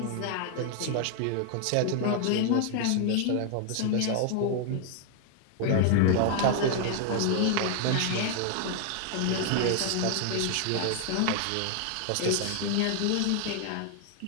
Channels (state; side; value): different; both; correlation 0.00